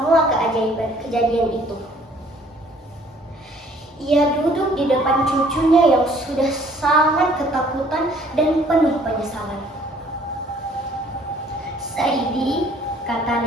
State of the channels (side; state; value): both; normal; correlation 0.59